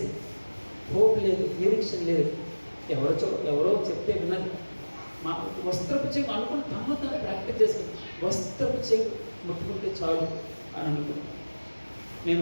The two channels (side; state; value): both; inverted; correlation -1.00